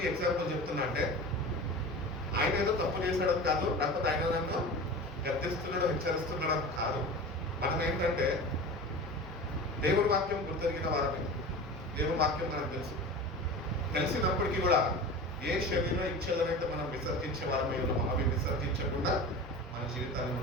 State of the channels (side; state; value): both; normal; correlation 0.33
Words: ఈ ఎగ్జాంపుల్ చెప్తున్నా అంటే, ఆయన ఏదో తప్పు చేశాడు కాదు, లేకపోతే ఆయన నన్ను గర్తిస్తున్నాడో హెచ్చరిస్తున్నాడో కాదు. మనం ఏంటంటే దేవుడి వాక్యం గుర్తెరిగిన వారిని, దేవుడి వాక్యం మనకు తెలిసినప్పటికీ కూడా ఏ శరీర ఇచ్చేదనైతే మనం విసర్జించే వారమై ఉన్నామో అవి విసర్జించకుండా మన జీవితాన్ని